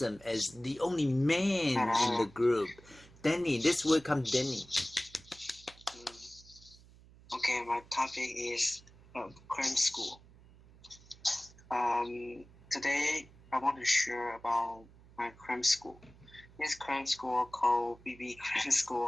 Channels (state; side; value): noise; right; hum, 24 dB below the sound